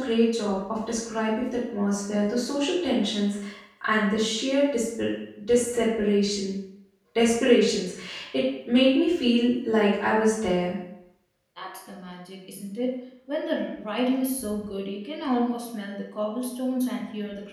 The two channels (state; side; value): identical; both; correlation 1.00